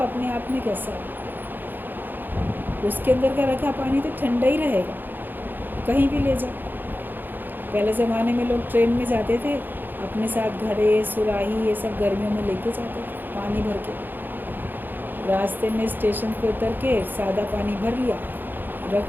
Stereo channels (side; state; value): left; late; 0.091 ms